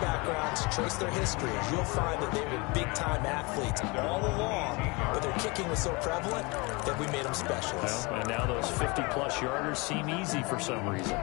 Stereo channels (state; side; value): quieter; right; 27.1 dB